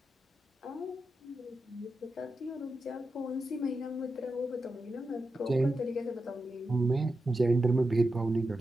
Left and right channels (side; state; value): both; normal; correlation 0.89